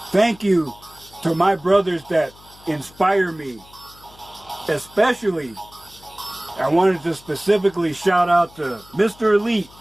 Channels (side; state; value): left; noise; hum, 25 dB below the sound